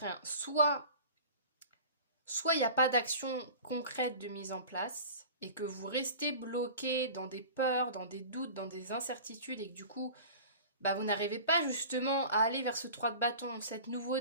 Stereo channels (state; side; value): inverted; both; correlation -0.39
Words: Soit il n'y a pas d'action concrète de mise en place et que vous restez bloqué dans des peurs, dans des doutes, dans des incertitudes et que du coup, vous n'arrivez pas justement à aller vers ce 3 de bâton, cette